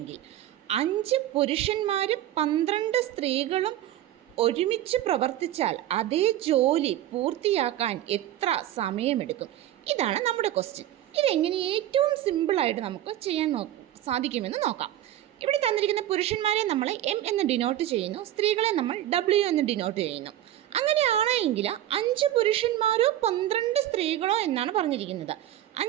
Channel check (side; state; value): left; quieter; 12.9 dB